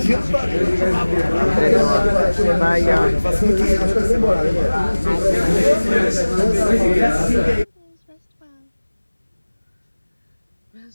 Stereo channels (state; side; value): inverted; both; correlation -1.00